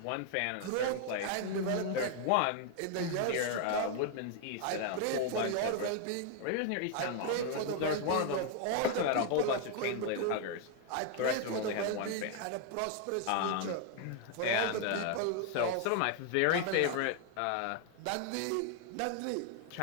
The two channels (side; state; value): both; different; correlation 0.00